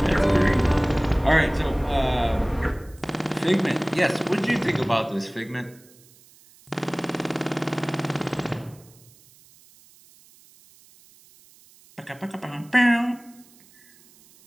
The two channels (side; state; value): right; noise; hiss, 27 dB below the sound